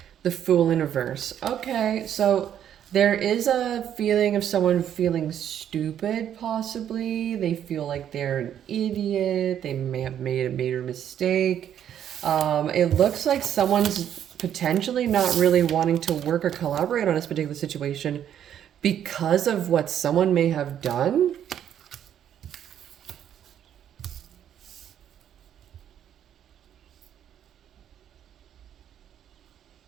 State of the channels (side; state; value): left; quieter; 9.9 dB